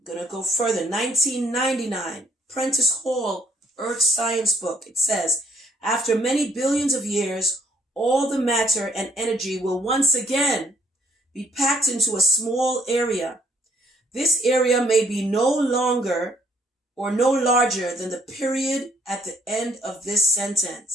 going to go further. 1999, Prentice Hall, Earth Science Book. It says, after many billions of years, all the matter and energy will once again be packed into a small area. This area may be no longer or no larger than the period at the end of this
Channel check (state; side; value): normal; both; correlation 0.66